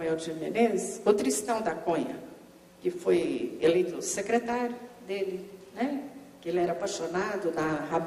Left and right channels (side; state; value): both; identical; correlation 1.00